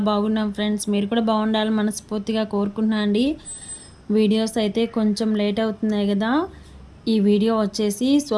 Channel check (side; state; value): both; identical; correlation 1.00